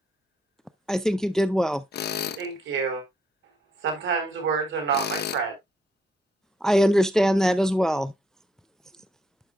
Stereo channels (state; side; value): normal; both; correlation 0.74